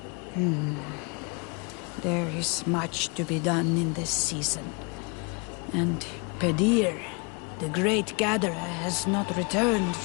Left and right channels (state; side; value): quieter; right; 31.9 dB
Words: There is much to be done in this season. And Pedir, the great gatherer, has not returned